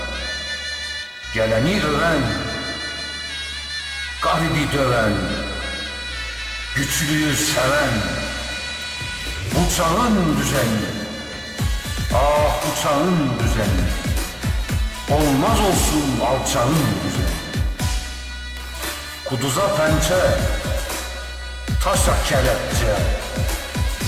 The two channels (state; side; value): identical; both; correlation 1.00